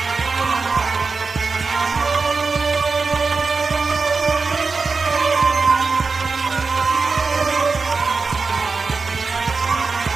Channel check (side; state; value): left; quieter; 4.4 dB